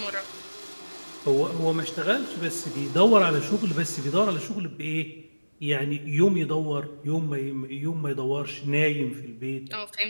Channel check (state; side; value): inverted; both; correlation -1.00